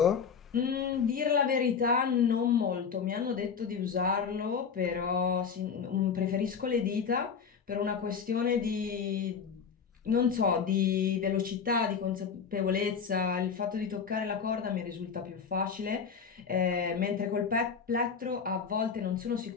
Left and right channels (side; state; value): right; quieter; 6.3 dB